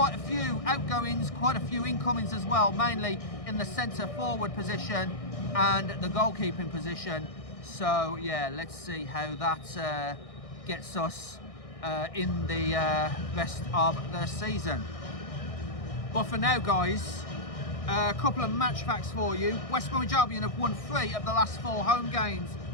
a few outgoings, quite a few incomings as well, mainly in the centre forward position and the goalkeeping position. So yeah, let's see how that gets us in the rest of the season. But for now, guys, a couple of match facts for you. West Bromwich Albion have won 3 of the last 4 home games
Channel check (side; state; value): right; late; 1.6 ms